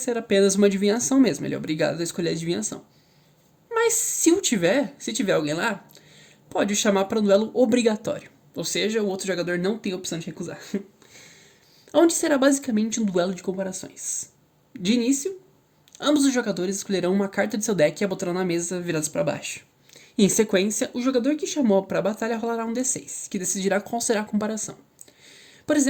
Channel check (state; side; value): identical; both; correlation 1.00